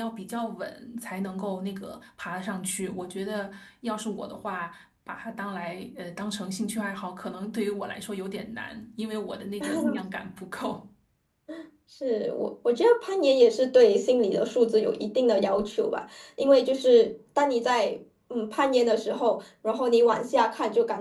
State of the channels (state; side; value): identical; both; correlation 1.00